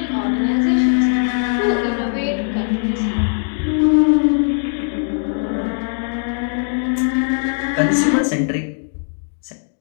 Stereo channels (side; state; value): right; silent; digital silence